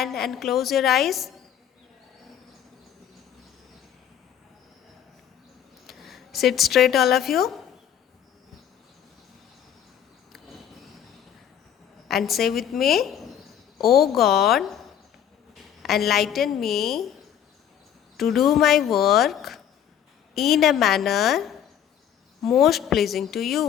and close your eyes. Sit straight, all of you. And say with me, O God, enlighten me to do my work in a manner most pleasing to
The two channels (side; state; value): right; quieter; 9.6 dB